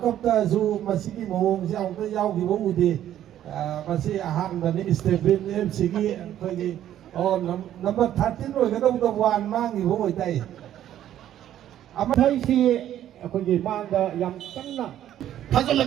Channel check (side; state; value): left; quieter; 11.6 dB